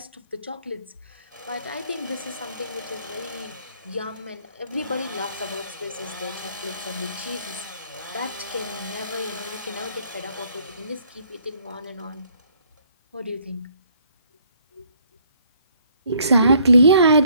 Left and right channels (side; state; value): both; inverted; correlation -0.64